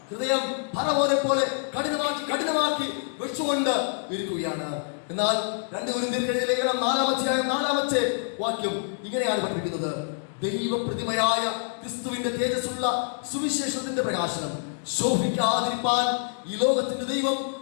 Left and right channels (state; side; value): silent; right; digital silence